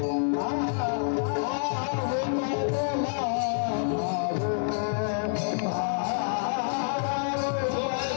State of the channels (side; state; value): right; silent; 60 dB below the other